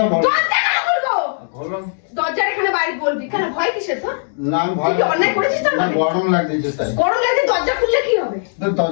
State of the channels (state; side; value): silent; right; digital silence